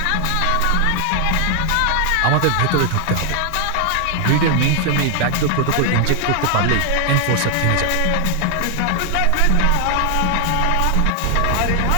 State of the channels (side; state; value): both; different; correlation 0.00